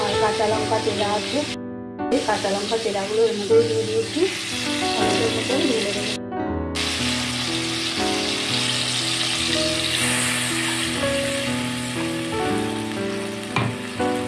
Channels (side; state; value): both; identical; correlation 1.00